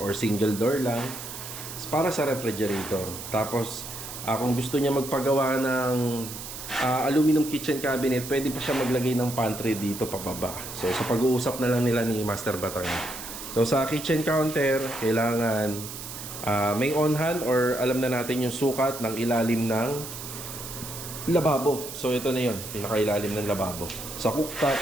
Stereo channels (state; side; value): noise; right; hiss, 10 dB below the sound